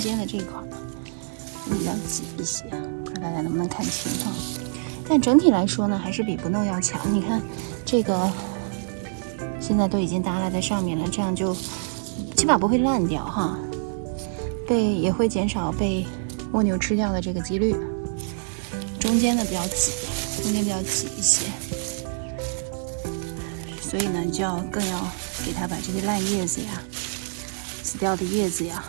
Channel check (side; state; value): left; silent; 61 dB below the other